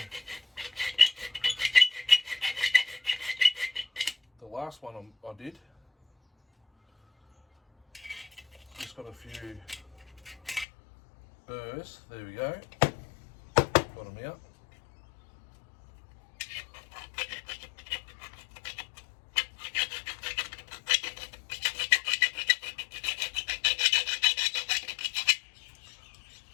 the last one I did. Just got a few burrs. There we go. Got them out.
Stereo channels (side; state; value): right; drops out; at 10.7 s